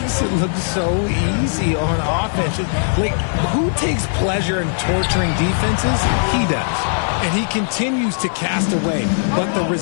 it look so easy on offense. Like, who takes pleasure in torturing defenses? He does. And he continues to cast away. But the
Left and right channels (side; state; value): right; silent; digital silence